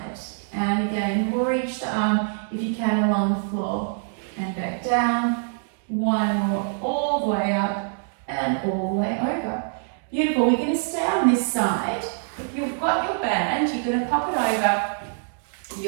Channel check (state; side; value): silent; left; digital silence